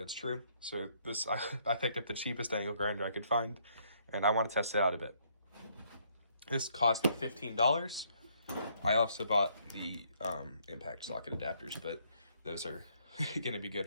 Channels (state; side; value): inverted; both; correlation -0.68